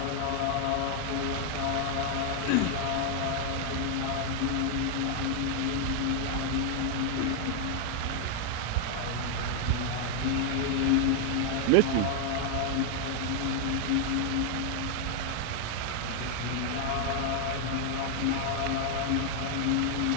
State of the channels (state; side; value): different; both; correlation 0.00